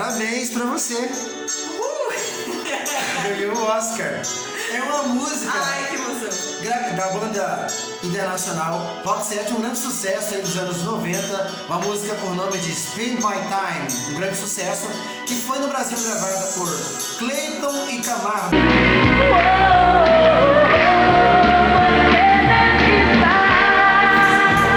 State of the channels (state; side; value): identical; both; correlation 1.00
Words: pra você. Ganhou o Oscar. É uma música Ai, que emoção. da banda internacional Rock 7, um grande sucesso aí dos anos 90, uma música por nome de Spend My Time, um grande sucesso, que foi no Brasil gravada por Clayton e Camargo.